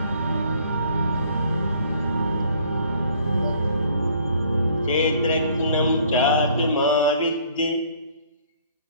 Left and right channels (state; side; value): inverted; both; correlation -0.58